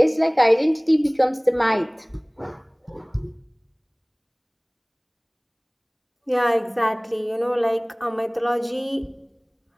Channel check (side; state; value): both; identical; correlation 1.00